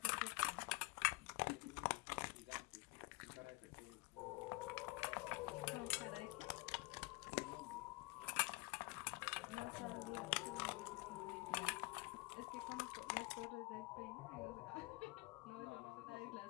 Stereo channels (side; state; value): right; quieter; 24.7 dB